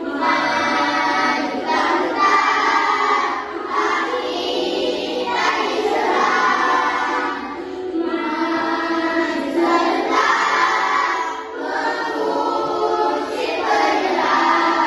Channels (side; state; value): both; identical; correlation 1.00